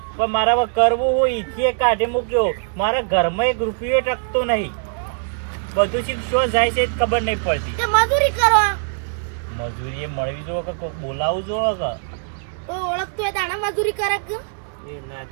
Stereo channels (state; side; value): silent; left; digital silence